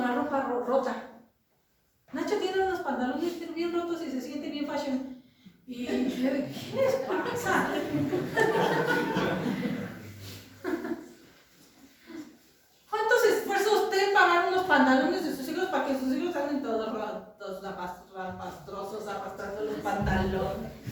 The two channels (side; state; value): both; identical; correlation 1.00